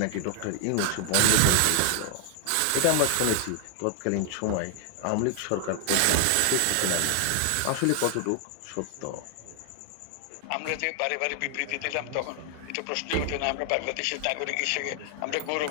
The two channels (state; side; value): different; both; correlation 0.00